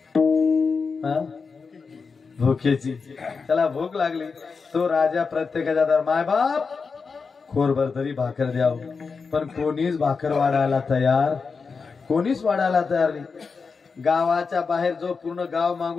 भुकेची. त्याला भूक लागली. तो राजा प्रत्येकाच्या दार, माय बाप खोरभर तरी भाकर द्याव, पण कोणीच भाकर वाढायला तयार, कोणीच वाढायला तयार नाही. गावाच्या बाहेर जो पूर्ण गाव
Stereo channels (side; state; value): right; quieter; 5.0 dB